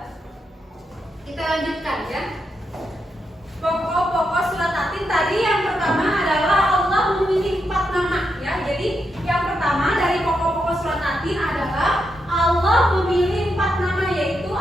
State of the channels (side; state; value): both; normal; correlation 0.84